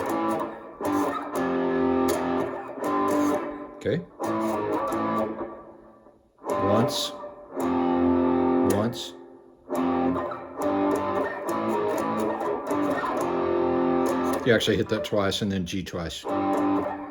Okay. Once. You actually hit that twice and then G twice.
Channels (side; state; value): both; identical; correlation 1.00